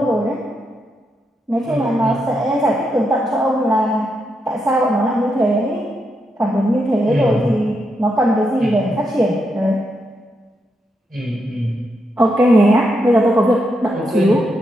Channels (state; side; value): normal; both; correlation 0.82